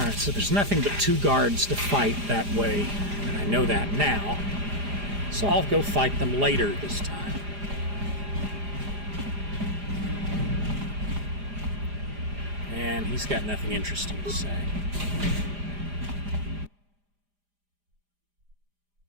so there's nothing but 2 guards to fight that way, and I know that now. So I'll go fight them later this time. And he's got nothing interesting to say.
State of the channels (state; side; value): late; left; 4.9 ms